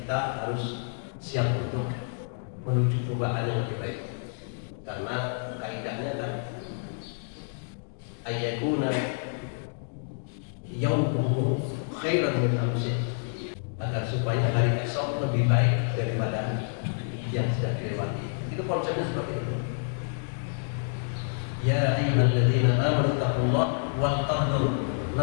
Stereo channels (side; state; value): right; silent; digital silence